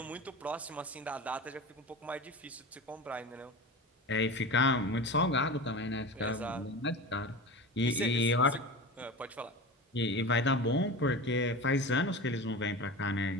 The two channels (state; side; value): normal; both; correlation 0.29